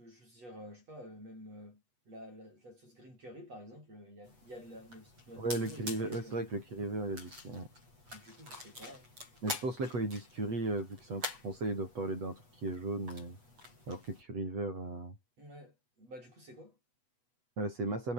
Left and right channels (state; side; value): late; left; 8.1 ms